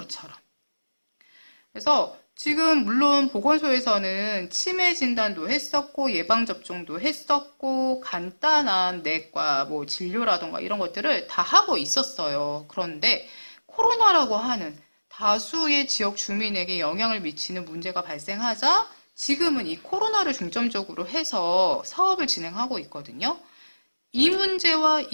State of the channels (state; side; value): inverted; both; correlation -1.00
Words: 그래서 지금 물론 보건소에서는 치매 진단도 했었고 예방접종도 했었고 간단한 내과 뭐 진료라던가 이런 것들을 다 하고 있었어요. 그런데 코로나라고 하는 다수의 지역 주민에게 영향을 미치는 문제가 발생하자 지금은 이 코로나를 중점적으로 해서 사업을 진행하고 있거든요. 이 문제와